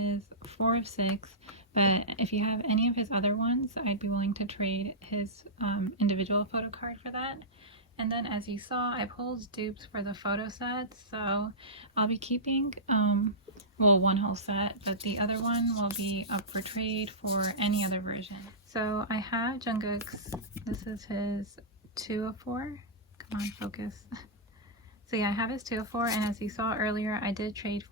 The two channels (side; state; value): both; normal; correlation -0.15